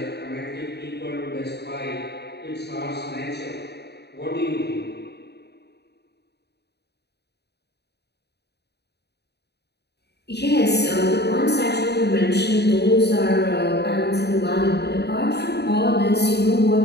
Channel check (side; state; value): right; late; 0.48 ms